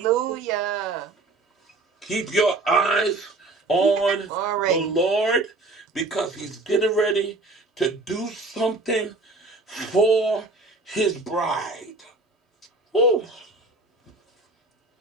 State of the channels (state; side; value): quieter; left; 3.1 dB